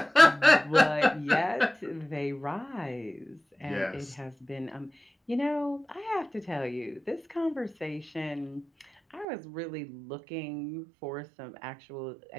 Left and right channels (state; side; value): drops out; left; at 9.2 s